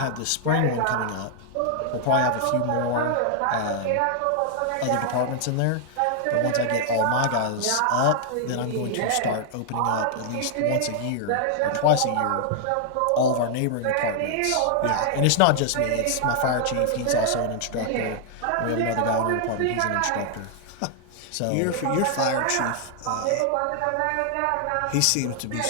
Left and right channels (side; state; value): both; different; correlation 0.00